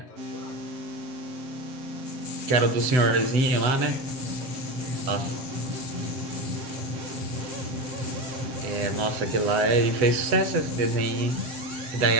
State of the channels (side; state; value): left; late; 8.0 ms